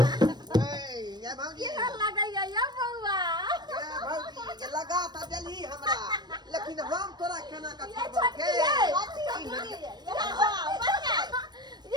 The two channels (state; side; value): late; left; 0.20 ms